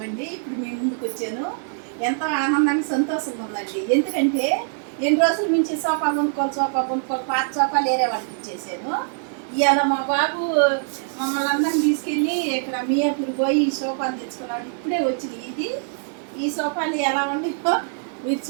అండి. ఇప్పుడు మేము ముందుకు వచ్చాను. ఎంతో ఆనందానికి సంతోషంగా ఉందండి. ఎందుకంటే ఎన్ని రోజుల నుంచి సోఫా కొనుక్కోవాలి పాత సోఫాలు వేరే వాళ్ళకి ఇచ్చేసాను. ఇవాళ మా బాబు మమ్మల్ని అందరిని తీసుకెళ్ళి ఇక్కడ మియాపూర్ పోయి ఈ సోఫాలు తెచ్చుకున్నాడు. ఇప్పుడే వచ్చింది. ఈ సోఫాలు ఎలా ఉన్నాయో మీరు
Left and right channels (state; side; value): silent; left; 60 dB below the other